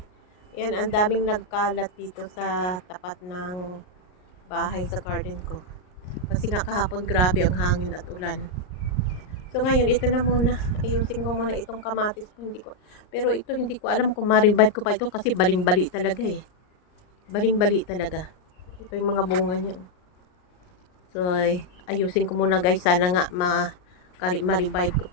Ayan, ang daming nagkalat dito sa tapat ng bahay sa garden ko. Kasi nga kahapon grabe ang hangin at ulan. So ngayon, ito na muna. Ayusin ko muna itong kamatis ko. Pero ito hindi ko alam kung ma-revive ko pa ito kasi baling-bali talaga eh. Baling-bali talaga. Ito yung mga bunga niya. So ayusin ko muna guys. Sana nga ma-revive ko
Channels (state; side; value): late; right; 39 ms